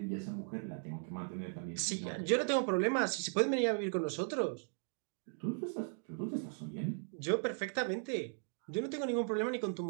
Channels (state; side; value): silent; left; 53 dB below the other